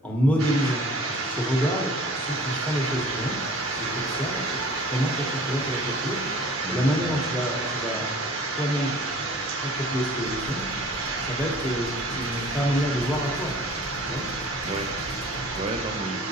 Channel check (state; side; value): normal; both; correlation 0.48